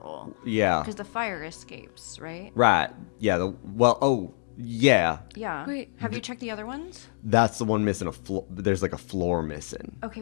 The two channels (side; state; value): right; silent; digital silence